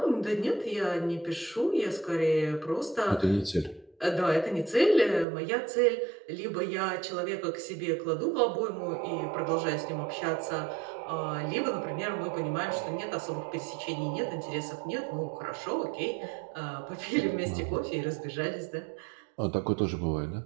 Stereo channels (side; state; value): left; drops out; at 5.2 s